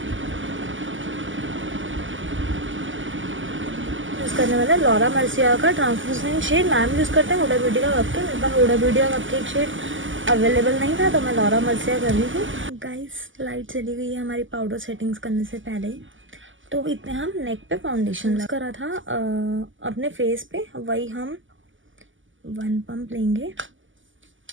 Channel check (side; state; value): left; late; 0.56 ms